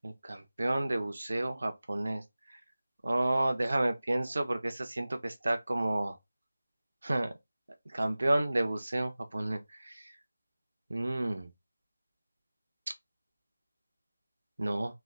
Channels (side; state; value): both; inverted; correlation -0.98